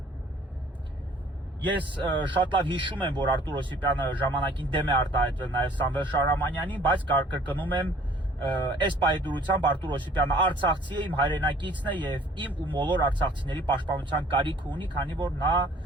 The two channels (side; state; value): both; normal; correlation 0.55